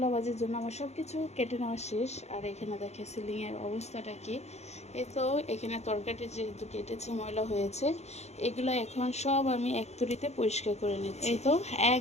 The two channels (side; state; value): right; late; 0.32 ms